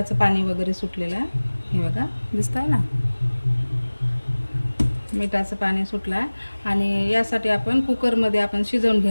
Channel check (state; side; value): inverted; both; correlation -1.00